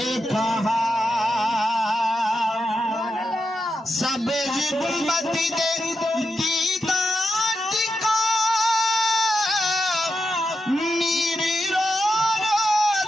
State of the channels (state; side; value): normal; both; correlation 0.88